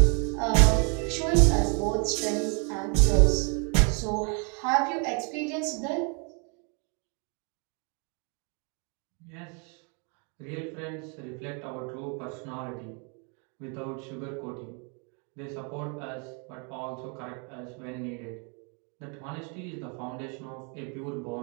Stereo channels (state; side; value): quieter; left; 36.8 dB